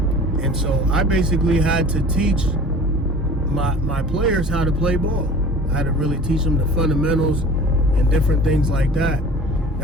And so I basically had to teach my players how to play ball. I had to really teach them the fundamentals and different things like that.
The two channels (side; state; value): both; normal; correlation 0.42